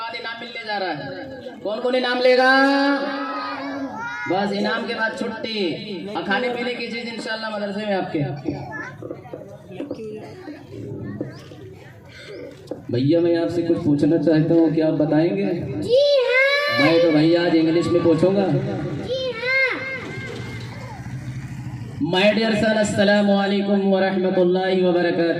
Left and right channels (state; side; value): identical; both; correlation 1.00